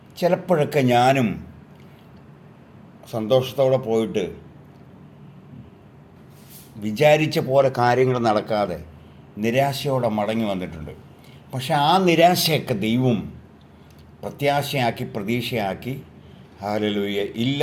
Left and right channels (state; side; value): identical; both; correlation 1.00